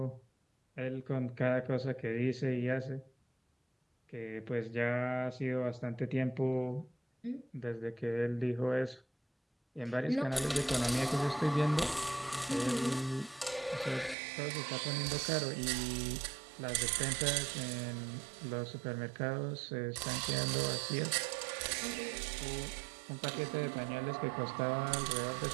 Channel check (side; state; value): left; drops out; at 14.2 s